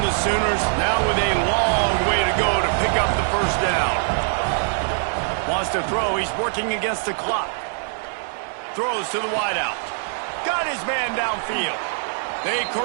the to throw. He's working against the clock. Throws to the wideout. Got his man downfield. They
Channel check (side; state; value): left; silent; 64 dB below the other